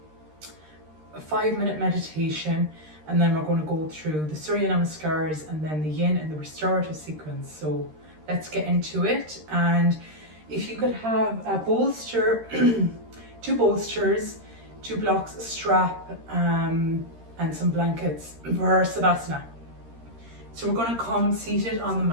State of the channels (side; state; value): left; late; 13 ms